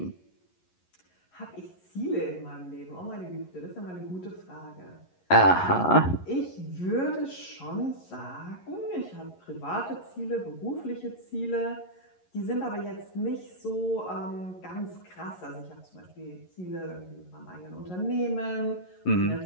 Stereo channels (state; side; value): late; right; 11 ms